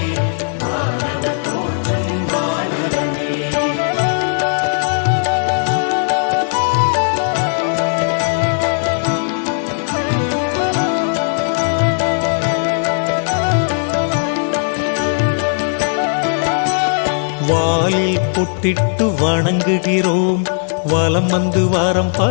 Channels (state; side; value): silent; right; 60 dB below the other